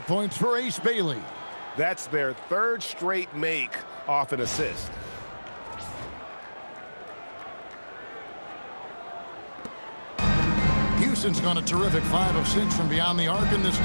points for Ace Bailey. That's their 3rd straight make off an assist. Houston's gone a terrific 5 of 6 from beyond the arc in this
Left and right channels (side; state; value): both; inverted; correlation -1.00